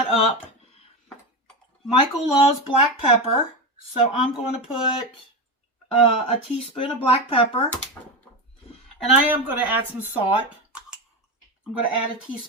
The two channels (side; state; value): both; normal; correlation 0.17